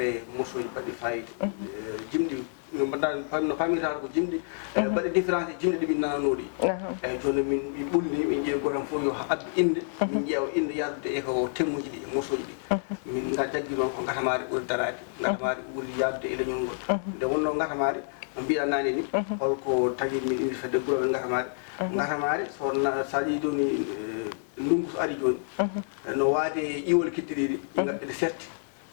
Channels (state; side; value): silent; right; 59 dB below the other